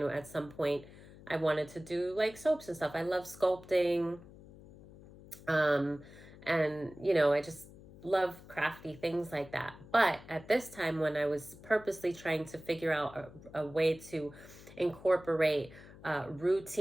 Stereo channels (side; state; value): left; noise; hum, 19 dB below the sound